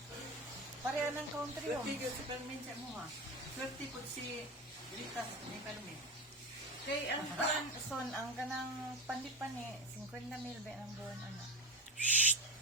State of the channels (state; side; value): normal; both; correlation 0.23